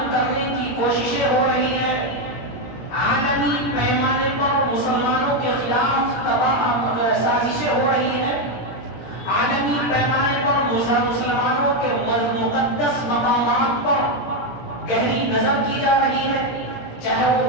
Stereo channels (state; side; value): late; right; 17 ms